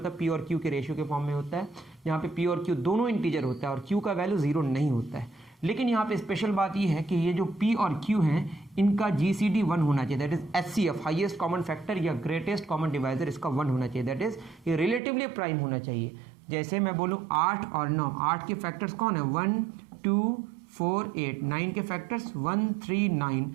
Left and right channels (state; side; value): drops out; left; at 15.0 s